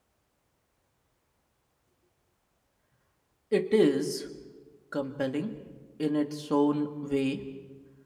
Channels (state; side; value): identical; both; correlation 1.00